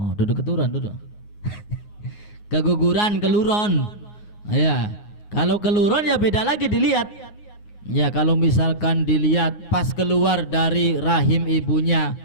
duduk keturunan, duduk. Keguguran, keluron. Ya, kalau keluron ya beda lagi dilihat. Ya, kalau misalkan dilihat pas keluar dari rahim ibunya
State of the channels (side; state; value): right; late; 9.6 ms